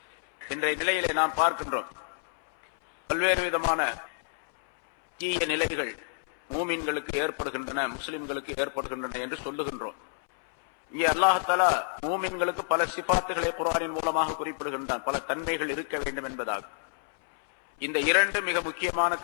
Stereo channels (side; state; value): right; silent; 59 dB below the other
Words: இன்றைய நிலையிலே நாம் பார்க்கின்றோம், பல்வேறு விதமான தீய நிலைகள் மூமின்களுக்கு ஏற்படுகின்றன, முஸ்லிம்களுக்கு ஏற்படுகின்றன என்று சொல்லுகின்றோம். இங்கே அல்லாஹ் தஆலா மூமின்களுக்கு பல சிபாத்துகளை குர்ஆனின் மூலமாக குறிப்பிடுகின்றான், பல தன்மைகள் இருக்க வேண்டும் என்பதாக. இந்த இரண்டு மிக முக்கியமான